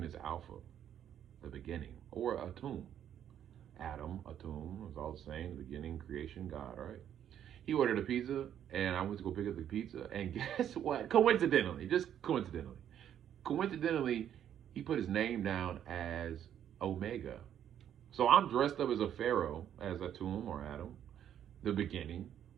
as Alpha, the beginning, or Atum. Adam, Atum, it's all the same, the beginning, creation, God, right? He ordered a pizza, and I went to go pick up the pizza, and guess what? Coincidentally, he put his name down as Omega. So I'm dressed up as a pharaoh, as Atum or Adam, the beginning,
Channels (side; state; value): left; quieter; 10.0 dB